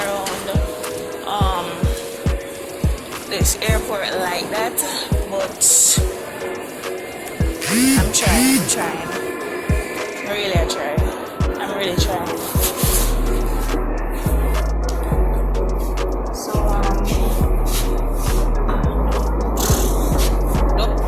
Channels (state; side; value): identical; both; correlation 1.00